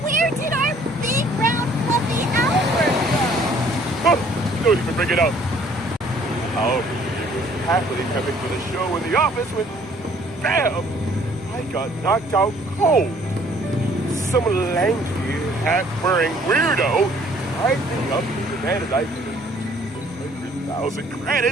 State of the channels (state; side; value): normal; both; correlation 0.59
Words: Where did our big, round, fluffy Albert go? Oh, don't even bring it up. Albert was happily prepping for the show in the office when, bam, I got knocked out cold. Some lanky, hat-wearing weirdo tied me up and demanded I pay 100,000